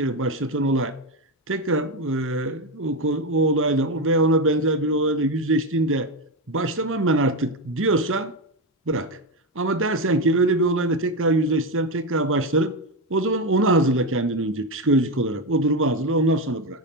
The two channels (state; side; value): normal; both; correlation 0.12